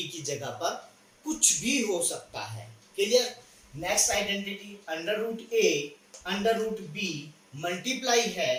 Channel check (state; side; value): identical; both; correlation 1.00